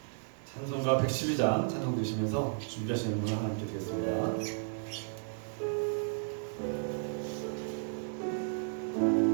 찬송가 112장 찬송 드시면서 준비하시는 분을 하나님께 드리겠습니다.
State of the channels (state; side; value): silent; left; 55 dB below the other